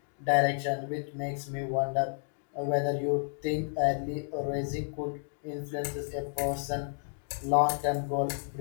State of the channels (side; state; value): right; silent; digital silence